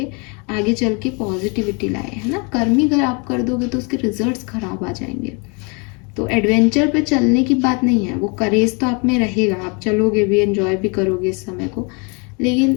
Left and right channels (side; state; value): right; quieter; 32.5 dB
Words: आगे चल के पॉजिटिविटी लाए, है ना। कर्म ही अगर आप कर दोगे तो उसके रिजल्ट्स खराब आ जाएंगे। तो एडवेंचर पे चलने की बात नहीं है, वो करेज तो आप में रहेगा, आप चलोगे भी, एंजॉय भी करोगे इस समय को, लेकिन